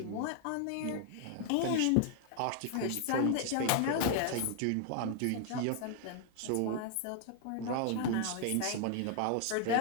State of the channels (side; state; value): both; different; correlation 0.00